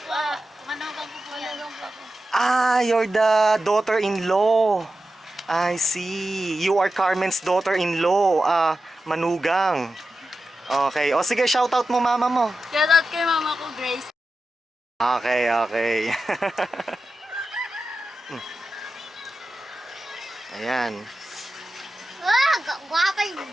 po. Managang po po yan. Ah, you're the daughter-in-law. I see. You are Carmen's daughter-in-law. Manugang. Okay. O sige, shoutout mo mama mo. Shoutout kay mama ko, Grace. Okay, okay. Ayan. Ah, gwapa yung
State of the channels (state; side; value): normal; both; correlation 0.92